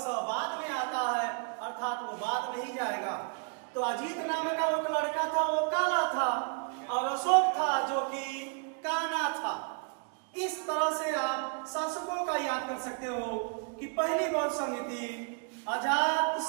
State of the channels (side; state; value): left; quieter; 39.8 dB